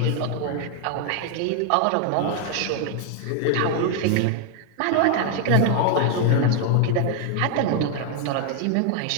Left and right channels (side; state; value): both; different; correlation 0.00